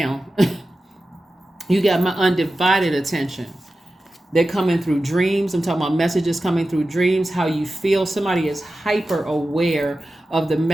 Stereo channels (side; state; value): both; normal; correlation 0.94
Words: You got my undivided attention. They're coming through dreams. I'm talking about messages coming through dreams, how you feel. Somebody is hyper aware of the